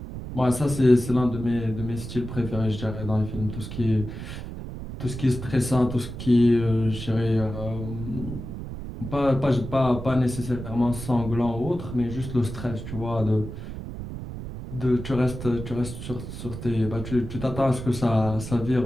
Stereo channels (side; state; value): right; noise; rumble, 9 dB below the sound